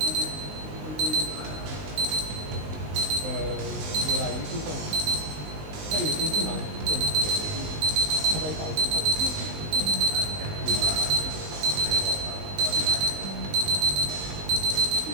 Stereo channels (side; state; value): left; late; 20 ms